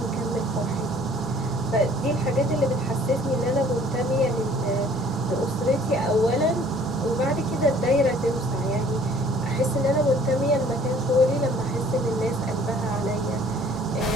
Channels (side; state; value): both; normal; correlation 0.55